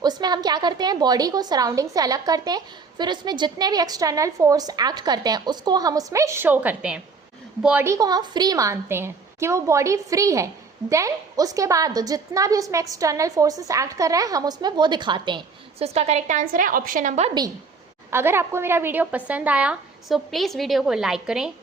उसमें हम क्या करते हैं बॉडी को सराउंडिंग से अलग करते हैं, फिर उसमें जितने भी एक्सटर्नल फोर्स एक्ट करते हैं उसको हम उसमें शो करते हैं। बॉडी को हम फ्री मानते हैं कि वो बॉडी फ्री है, देन उसके बाद जितना भी उसमें एक्सटर्नल फोर्सेस एक्ट कर रहे हैं हम उसमें वो दिखाते हैं। सो इसका करेक्ट आंसर है ऑप्शन नंबर बी। अगर आपको मेरा वीडियो पसंद आया सो प्लीज़ वीडियो को लाइक करें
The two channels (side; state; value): left; quieter; 4.7 dB